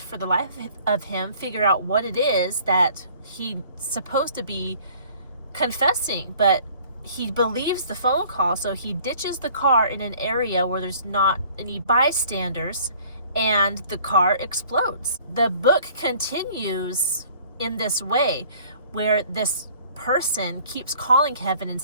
the life of him, figure out what it is that he's supposed to be confessing. But he believes the phone call, so he ditches the car in an area where there's not any bystanders, and the car explodes. The book continues in this way, where this person keeps calling Kevin and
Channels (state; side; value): inverted; both; correlation -0.54